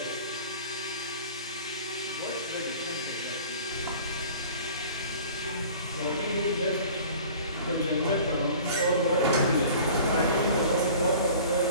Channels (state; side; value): inverted; both; correlation -0.45